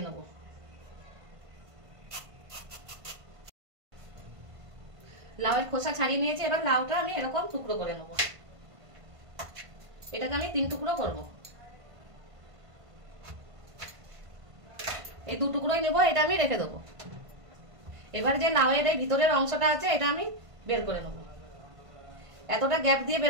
নেব। লাউয়ের খোসা ছাড়িয়ে নিয়েছি, এবার লাউটা আমি এরকম টুকরো করে নেব। এটাকে আমি 3 টুকরো করব। এই 2 টুকরোই নেব, এটা আমি রেখে দেবো। এবার যে লাউয়ের এই ভিতরের অংশটা আছে এটা আমি বের করে নেব। এতটা গ্যাপ দিয়ে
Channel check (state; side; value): late; left; 1.5 ms